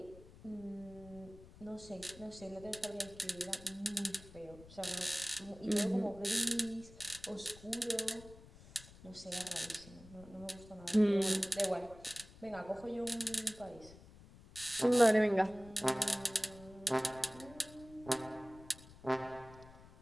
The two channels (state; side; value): noise; left; rumble, 20 dB below the sound